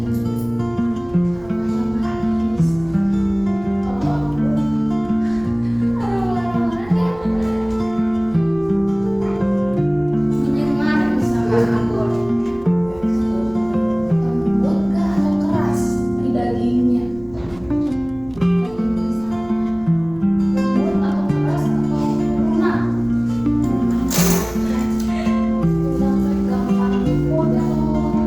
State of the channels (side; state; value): right; noise; rumble, 22 dB below the sound